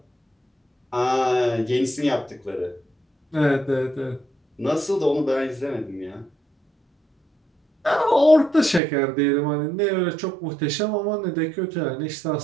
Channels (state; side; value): drops out; left; at 8.8 s